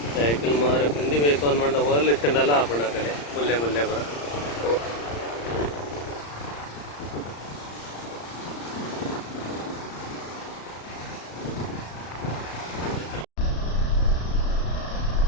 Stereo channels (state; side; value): late; right; 35 ms